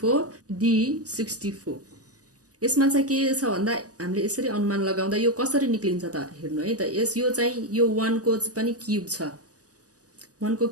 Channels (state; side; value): late; left; 0.67 ms